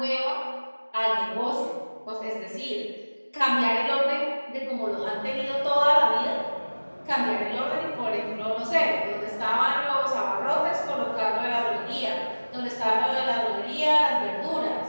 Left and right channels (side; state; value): both; inverted; correlation -1.00